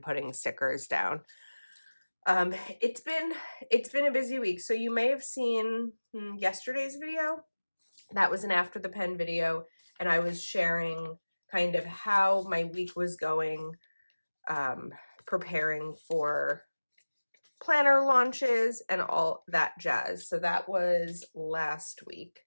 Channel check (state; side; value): inverted; both; correlation -1.00